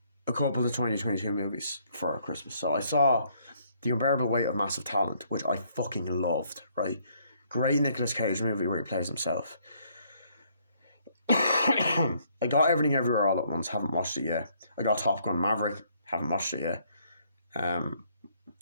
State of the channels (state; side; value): inverted; both; correlation -0.67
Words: a couple of 2022 movies for Christmas. So I saw The Unbearable Weight of Massive Talent, which I fucking loved, right? Great Nicolas Cage movie where he plays himself. I got Everything Everywhere All at Once, haven't watched it yet. I got Top Gun Maverick, haven't watched it yet.